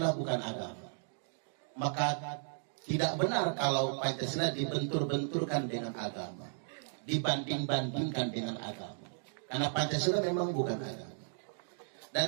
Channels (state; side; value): silent; left; digital silence